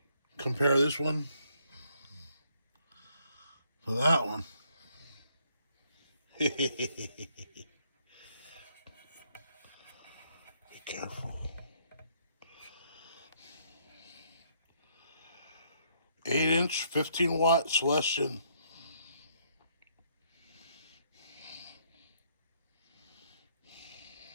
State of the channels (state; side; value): inverted; both; correlation -0.70